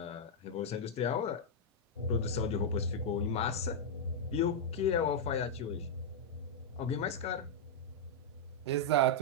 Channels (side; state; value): both; normal; correlation -0.04